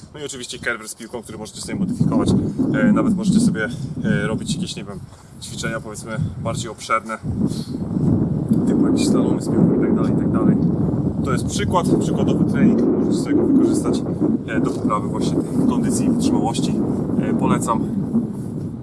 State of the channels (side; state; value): both; identical; correlation 1.00